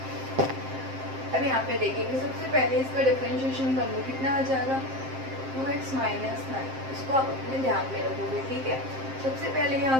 अब यहाँ पे देखेंगे, सबसे पहले इसका डिफरेंशिएशन कर लो, कितना आ जाएगा 2x माइनस 9। इसको आप अपने ध्यान में रखोगे, ठीक है। सबसे पहले यहाँ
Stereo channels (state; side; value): late; left; 7.6 ms